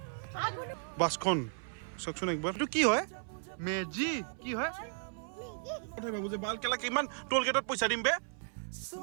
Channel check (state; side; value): silent; left; 54 dB below the other